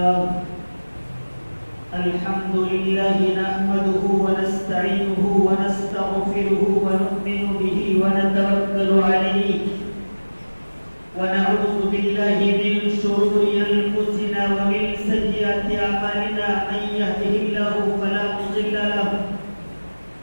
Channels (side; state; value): both; inverted; correlation -1.00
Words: لله نحمده ونستعينه ونستغفره ونؤمن به ونتوكل عليه ونعوذ بالله من شرور أنفسنا ومن سيئات أعمالنا من يهده الله فلا مضل له